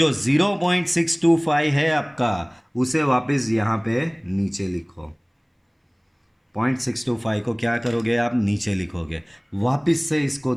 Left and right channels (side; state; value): both; identical; correlation 1.00